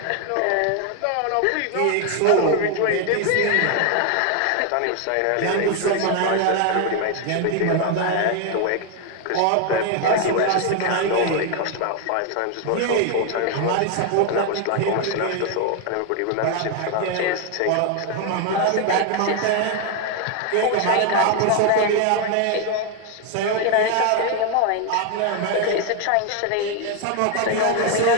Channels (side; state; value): both; different; correlation 0.01